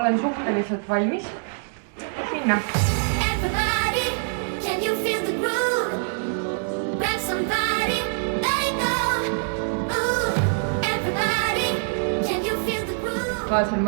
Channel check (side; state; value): left; silent; digital silence